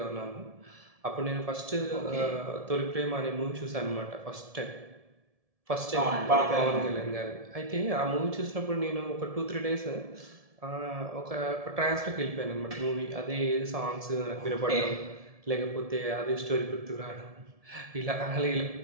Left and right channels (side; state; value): left; late; 1.7 ms